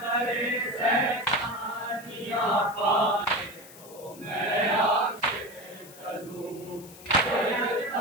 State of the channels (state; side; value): noise; left; hiss, 19 dB below the sound